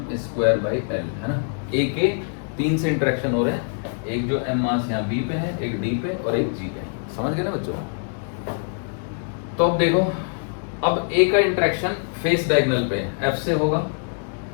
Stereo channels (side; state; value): right; silent; 63 dB below the other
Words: स्क्वायर बाई एल, है ना। ए के 3 से इंटरेक्शन हो रहे हैं, एक जो एम मास यहाँ बी पे है, एक डी पे और एक जी पे, समझ गए ना बच्चों। तो अब देखो, अब ए का इंटरेक्शन फेस डायगोनल पे एफ से होगा,